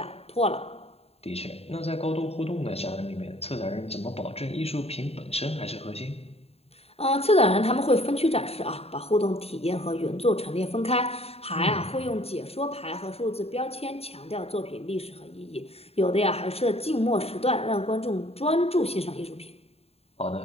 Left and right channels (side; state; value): right; late; 0.29 ms